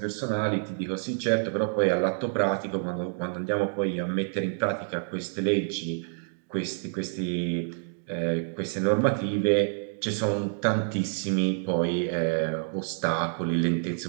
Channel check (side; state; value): left; silent; digital silence